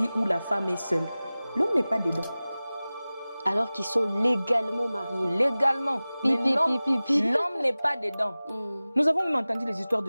où la femme est seule. L'homme n'est pas dedans. Alors qu'ils sont légalement mariés. Légalement. Mais l'homme n'est pas dedans. Nous avons même entendu les histoires de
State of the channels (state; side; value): inverted; both; correlation -0.98